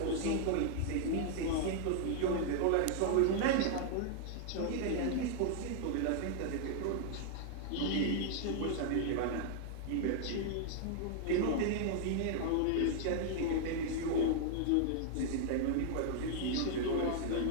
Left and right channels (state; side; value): different; both; correlation 0.00